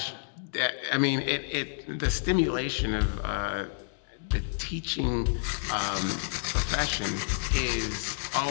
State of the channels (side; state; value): right; silent; digital silence